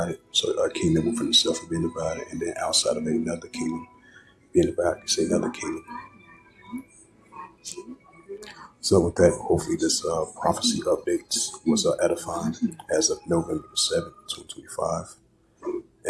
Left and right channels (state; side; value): identical; both; correlation 1.00